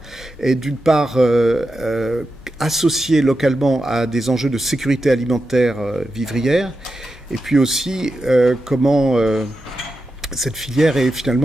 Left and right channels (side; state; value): both; normal; correlation 0.89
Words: est d'une part associée localement à des enjeux de sécurité alimentaire vivrière et puis aussi comment cette filière est